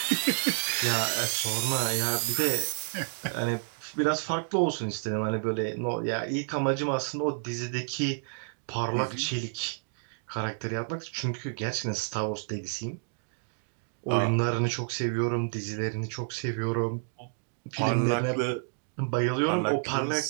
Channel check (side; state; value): left; silent; digital silence